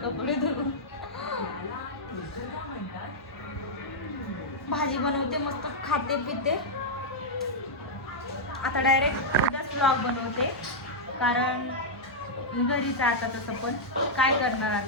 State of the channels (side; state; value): both; normal; correlation -0.06